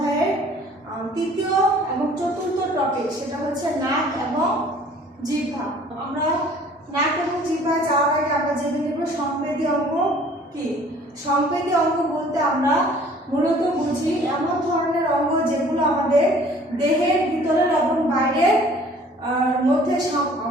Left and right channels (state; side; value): normal; both; correlation 0.52